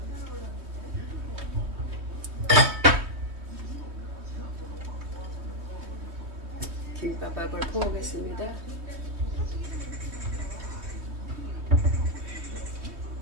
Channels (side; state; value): left; late; 3.2 ms